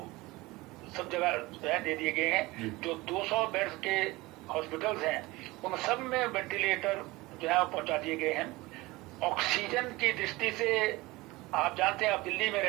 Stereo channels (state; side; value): quieter; left; 21.1 dB